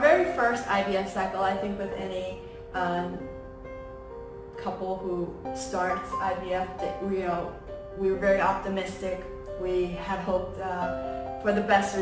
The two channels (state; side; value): identical; both; correlation 1.00